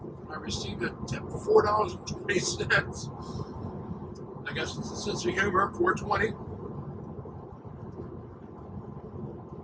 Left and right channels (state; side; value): identical; both; correlation 1.00